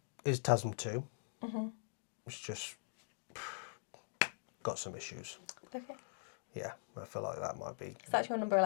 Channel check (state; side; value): silent; right; digital silence